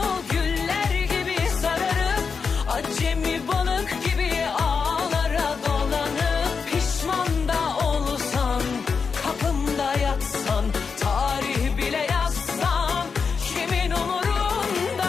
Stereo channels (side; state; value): right; quieter; 5.5 dB